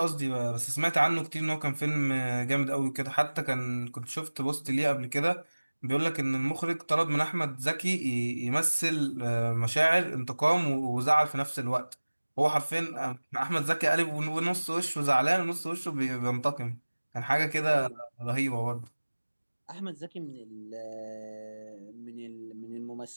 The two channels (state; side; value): inverted; both; correlation -1.00